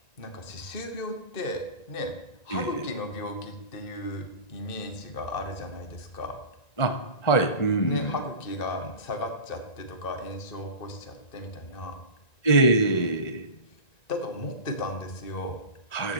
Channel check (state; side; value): late; right; 1.9 ms